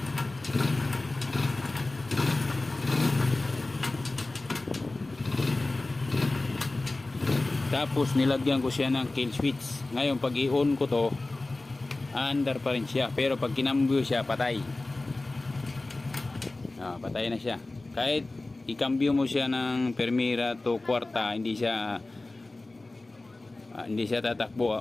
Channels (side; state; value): right; quieter; 3.0 dB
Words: 4, tapos nilagyan ko siya ng kill switch. Ngayon pag i-on ko to, under pa rin siya, pero pag kinambyo siya, patay. Patay na siya. Kahit i-cambio mo siya ng Primera to kwarta, hindi siya tatakbo,